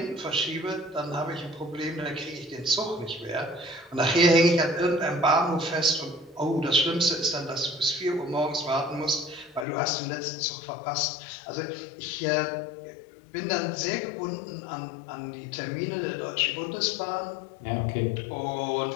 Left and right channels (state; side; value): drops out; right; at 9.7 s